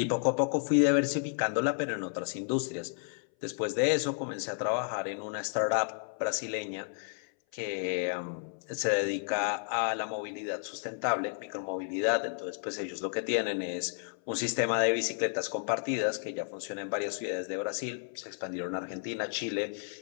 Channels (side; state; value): right; silent; 56 dB below the other